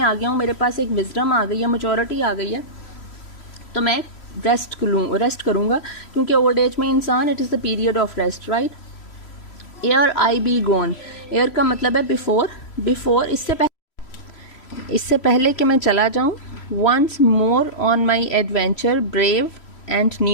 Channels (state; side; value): late; right; 3.0 ms